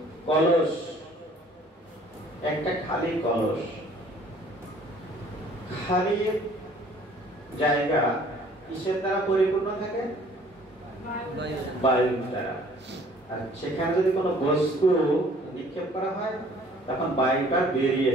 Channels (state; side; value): normal; both; correlation 0.55